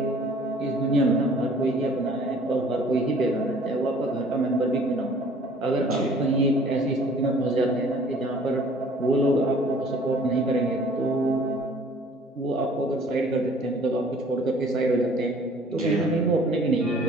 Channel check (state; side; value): normal; both; correlation 0.53